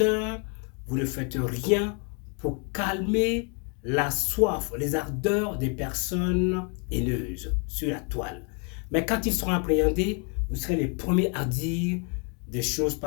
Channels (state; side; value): quieter; right; 37.2 dB